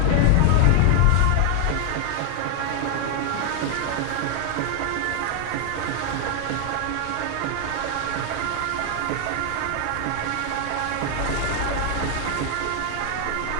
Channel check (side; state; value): both; different; correlation 0.00